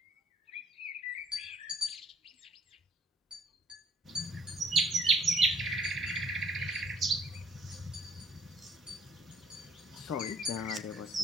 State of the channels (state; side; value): normal; both; correlation 0.63